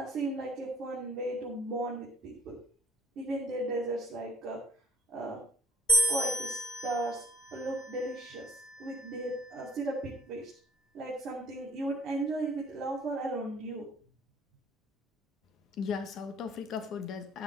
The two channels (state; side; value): normal; both; correlation 0.58